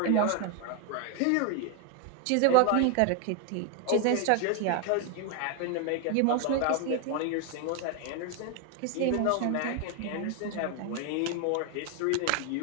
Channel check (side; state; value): both; different; correlation 0.01